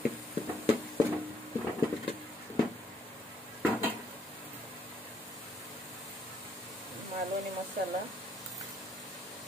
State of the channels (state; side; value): normal; both; correlation 0.70